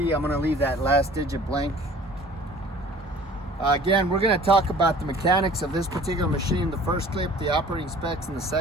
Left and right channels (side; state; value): both; normal; correlation 0.48